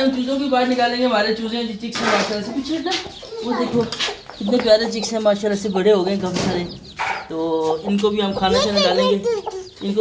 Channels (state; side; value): identical; both; correlation 1.00